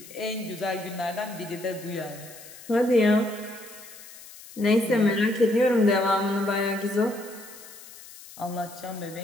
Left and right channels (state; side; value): noise; left; hiss, 18 dB below the sound